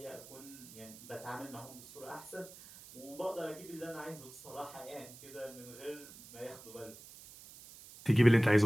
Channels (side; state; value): right; noise; hiss, 17 dB below the sound